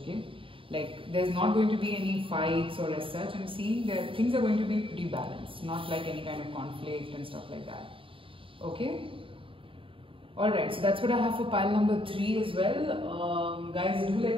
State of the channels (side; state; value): left; late; 0.25 ms